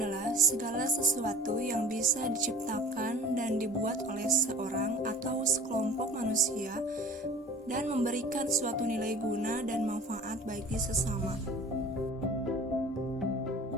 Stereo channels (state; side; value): normal; both; correlation 0.44